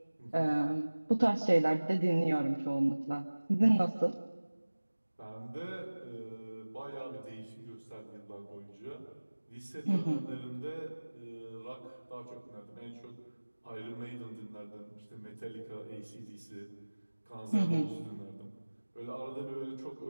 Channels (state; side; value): inverted; both; correlation -1.00